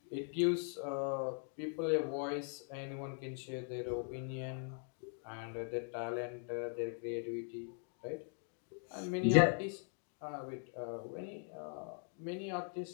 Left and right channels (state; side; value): silent; right; 51 dB below the other